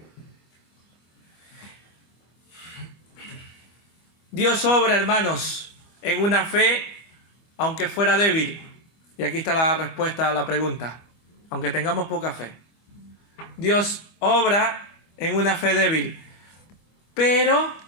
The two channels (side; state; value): right; late; 25 ms